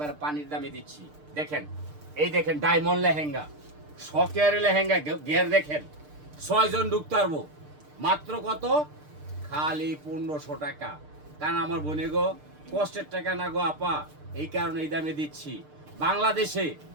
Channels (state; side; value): late; left; 6.6 ms